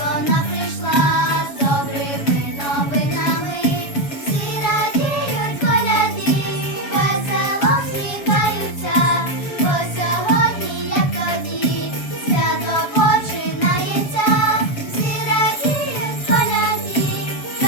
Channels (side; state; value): right; late; 7.2 ms